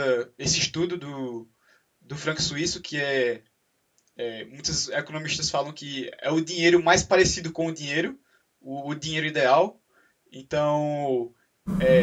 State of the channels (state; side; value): identical; both; correlation 1.00